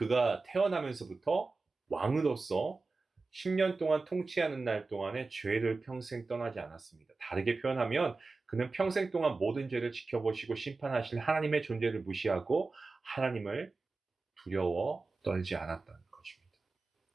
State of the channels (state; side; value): quieter; left; 3.8 dB